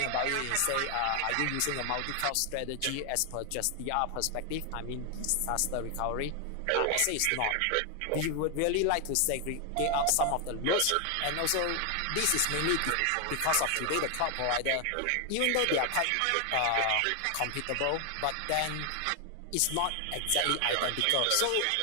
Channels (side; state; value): both; different; correlation 0.00